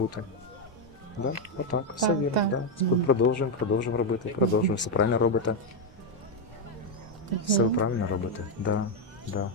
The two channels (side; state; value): both; normal; correlation 0.03